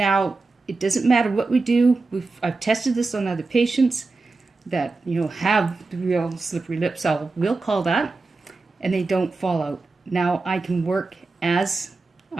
it doesn't matter what we do. I've tested this on other patients that have the real slippery lips, we'll call that, and they don't fall out. Now I can work as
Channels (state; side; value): quieter; left; 3.7 dB